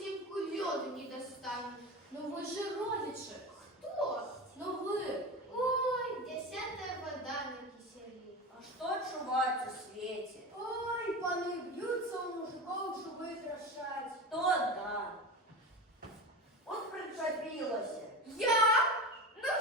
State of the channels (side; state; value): both; normal; correlation 0.26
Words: льоду не достану. Ну ви же родичі. Хто? Ну ви. Ой, 10-я вода на киселі. А что чувать у свете? Ой, пани б'ються у мужиков, щоб прикрашать. То да. Вот причепилась. Я? Ну